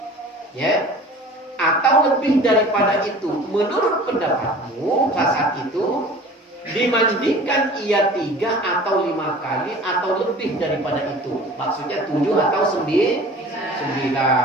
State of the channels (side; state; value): both; normal; correlation 0.43